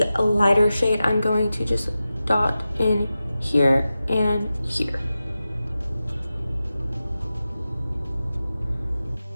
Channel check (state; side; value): inverted; both; correlation -0.93